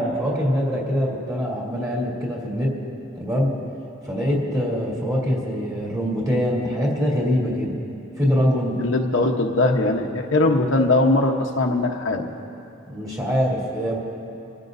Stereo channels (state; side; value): normal; both; correlation 0.54